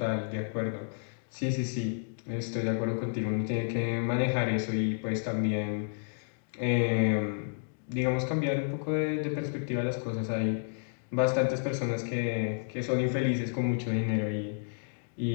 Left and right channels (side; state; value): right; silent; digital silence